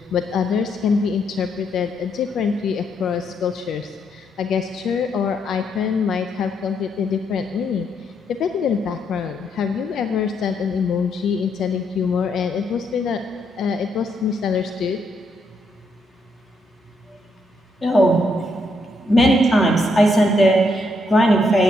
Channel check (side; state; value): both; normal; correlation 0.76